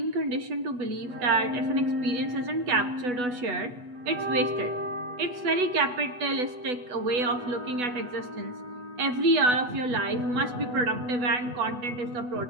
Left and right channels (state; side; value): late; left; 8.1 ms